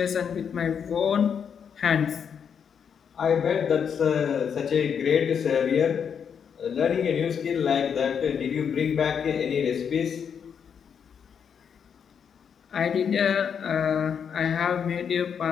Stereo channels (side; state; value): right; quieter; 7.3 dB